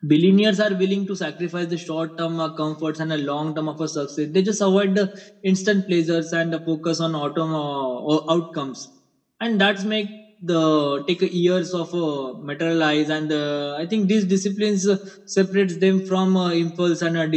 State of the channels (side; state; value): both; identical; correlation 1.00